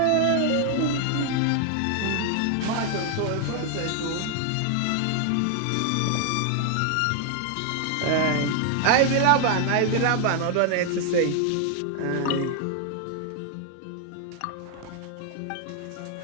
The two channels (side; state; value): both; different; correlation 0.00